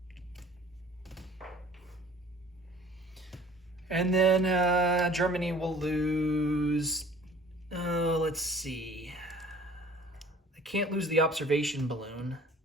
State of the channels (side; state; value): both; normal; correlation 0.50